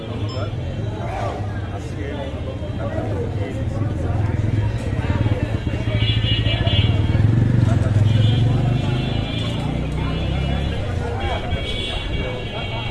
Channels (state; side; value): identical; both; correlation 1.00